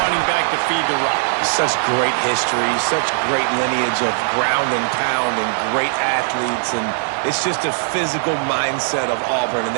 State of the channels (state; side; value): silent; left; digital silence